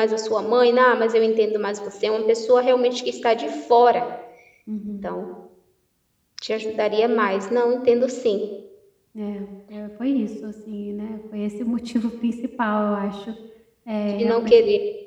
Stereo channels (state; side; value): identical; both; correlation 1.00